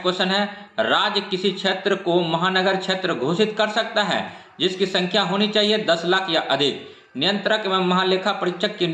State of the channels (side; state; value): both; identical; correlation 1.00